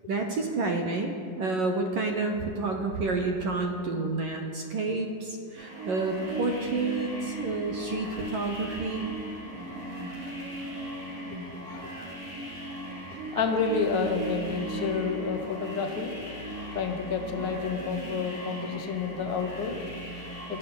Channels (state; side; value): late; left; 11 ms